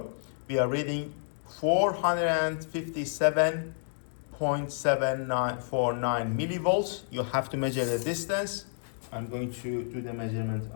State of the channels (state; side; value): silent; right; digital silence